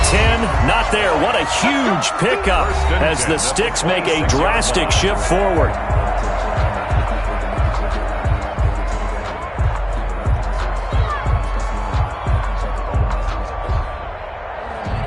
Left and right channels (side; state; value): both; identical; correlation 1.00